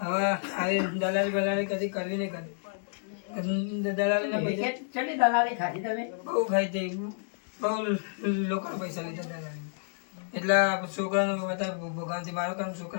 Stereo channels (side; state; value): right; silent; digital silence